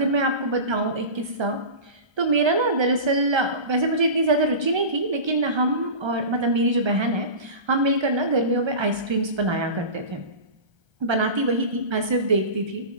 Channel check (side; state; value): left; late; 1.3 ms